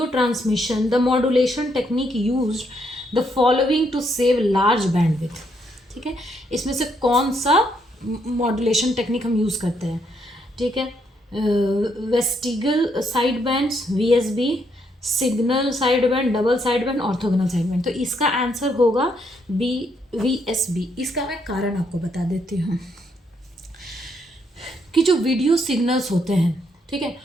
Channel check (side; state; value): both; normal; correlation 0.74